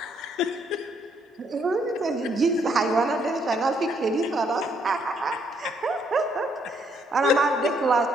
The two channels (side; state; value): both; normal; correlation 0.71